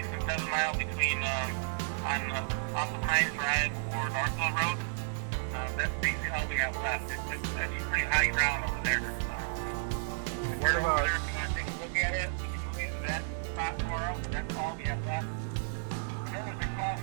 and 7 miles between off of Hines Drive or Northville Road. That's basically all we have left. It's actually pretty high ground over there. What about? If you want to take a look at it, we can move you to that spot tomorrow. That's all we have left. I know there's a cross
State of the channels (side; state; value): left; silent; digital silence